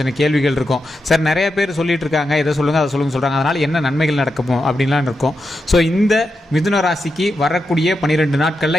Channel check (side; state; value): both; normal; correlation 0.87